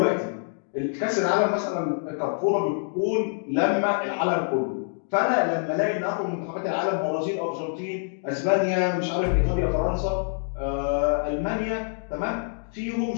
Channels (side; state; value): right; silent; digital silence